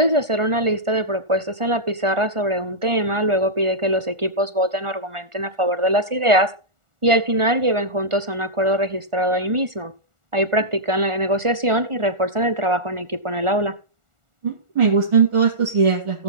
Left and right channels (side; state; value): left; late; 1.4 ms